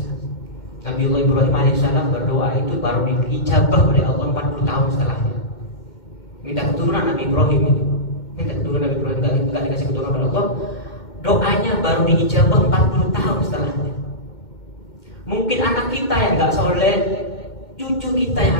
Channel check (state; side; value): late; right; 2.1 ms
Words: Nabi Allah Ibrahim alaihissalam berdoa itu baru diijabah oleh Allah 40 tahun setelahnya. Minta keturunan Nabi Ibrahim itu, nggak dikasih keturunan oleh Allah. Doanya baru diijabah 40 tahun setelahnya. Mungkin anak kita yang nggak soleh, cucu kita yang